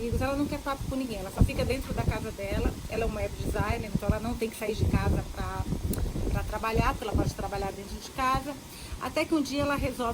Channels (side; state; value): both; identical; correlation 1.00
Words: ela não quer papo com ninguém, ela só fica dentro da casa dela, ela é uma web designer, então ela não tem que sair de casa para trabalhar, porque ela pode trabalhar dentro de casa, até que um dia ela